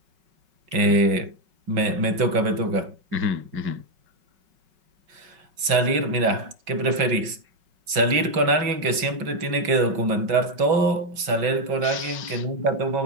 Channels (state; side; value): late; left; 5.3 ms